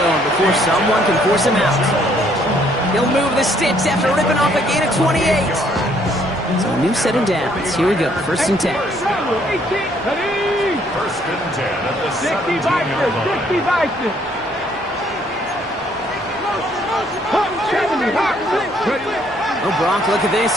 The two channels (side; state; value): both; normal; correlation 0.66